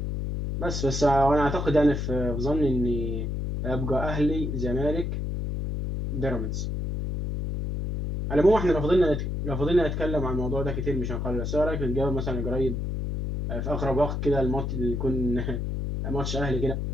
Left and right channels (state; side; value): noise; left; hum, 2 dB below the sound